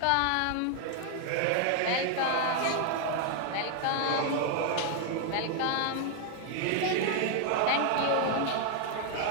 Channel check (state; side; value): different; both; correlation 0.00